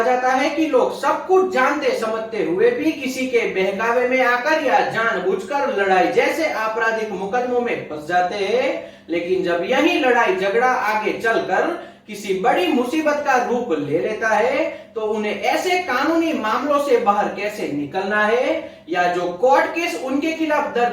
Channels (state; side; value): identical; both; correlation 1.00